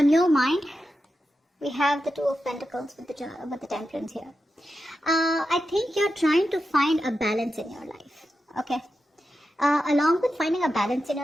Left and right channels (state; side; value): normal; both; correlation 0.90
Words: your mind, we have the Two of Pentacles with the Temperance here. I think you're trying to find a balance in your life. Okay. Along with finding a balance in